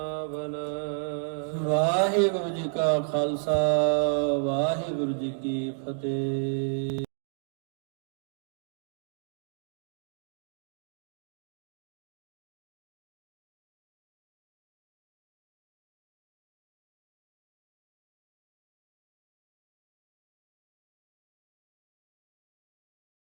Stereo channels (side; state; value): left; silent; digital silence